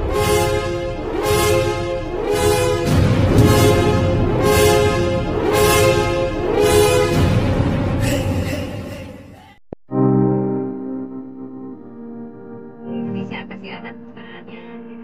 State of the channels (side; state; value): both; identical; correlation 1.00